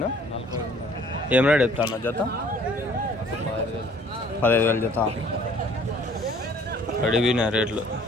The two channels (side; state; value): both; normal; correlation 0.56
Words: ఏం రేట్ చెప్తాను జత? 15,000 జత. పడిపోయినాయి